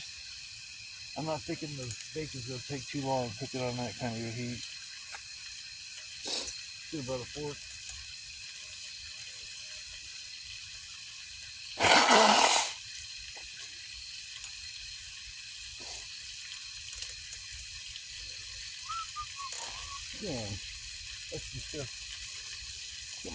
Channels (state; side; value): identical; both; correlation 1.00